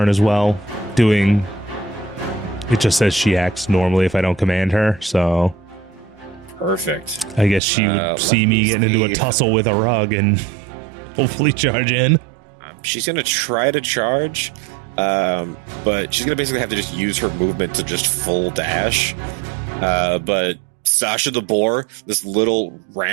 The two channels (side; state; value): left; drops out; at 7.6 s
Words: as well, doing... It just says she acts normally if I don't command her, so... Perfect. I guess she would see me getting into a tussle with a rug and hopefully charge in. She's going to try to charge, but she's going to basically have to just use her movement to just full dash. But Sasha the Boar, this little